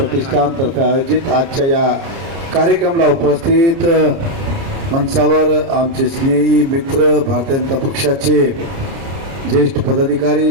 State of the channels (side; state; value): left; late; 30 ms